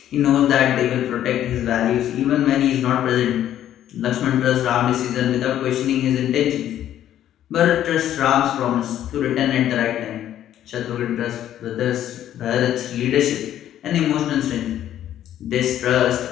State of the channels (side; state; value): right; quieter; 11.5 dB